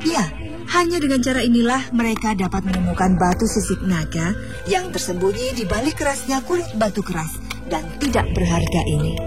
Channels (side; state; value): both; identical; correlation 1.00